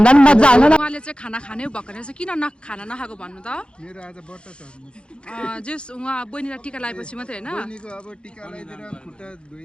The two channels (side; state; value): right; late; 0.056 ms